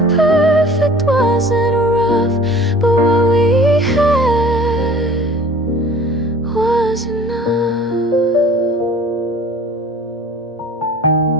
perfect, wasn't rough, but what we had was enough.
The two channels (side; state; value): both; normal; correlation 0.46